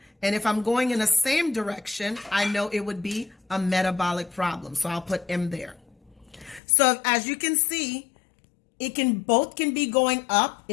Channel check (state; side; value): drops out; right; at 6.6 s